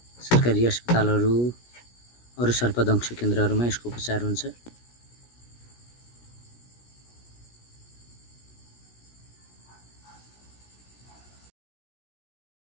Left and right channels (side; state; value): right; late; 17 ms